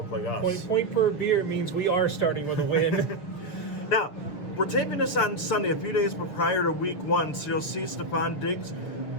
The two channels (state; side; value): late; right; 6.9 ms